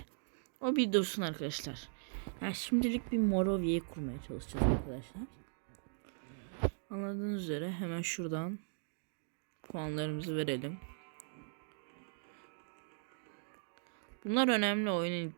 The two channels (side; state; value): left; silent; digital silence